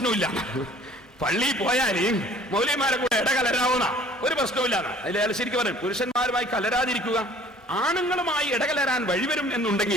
പള്ളിയിൽ പോയാല് മൗലവിമാരെ കൂടെ ഇടകലരാവുന്ന ഒരു പ്രശ്നമില്ല. അതിൽ ശരിക്കും പറയും, പുരുഷന്മാരുമായി കലരാതിരിക്കുക. ആണുങ്ങളുമായി ഇടകലരാൻ വഴിവരും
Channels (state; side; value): normal; both; correlation 0.52